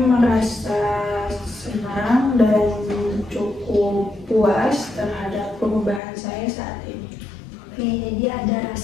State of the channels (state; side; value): drops out; right; at 6.0 s